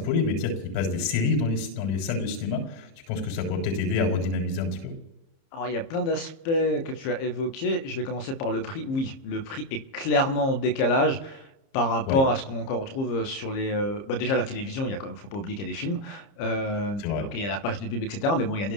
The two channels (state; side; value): late; right; 30 ms